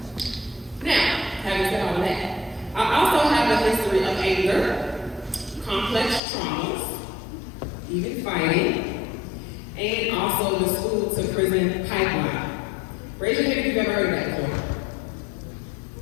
Now, having said all of that, I also have a history of anger, complex traumas, even fighting, and also the school to prison pipeline. Raise your hand if you've ever heard of that before.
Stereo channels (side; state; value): right; drops out; at 6.2 s